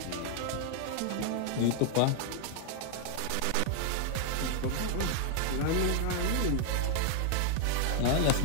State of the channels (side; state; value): both; different; correlation 0.00